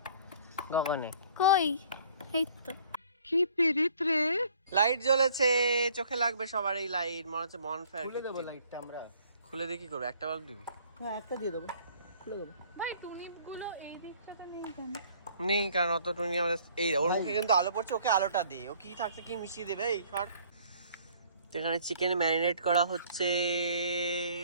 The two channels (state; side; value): inverted; both; correlation -0.56